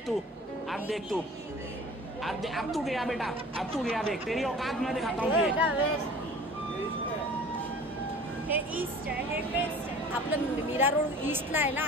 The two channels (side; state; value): both; normal; correlation 0.44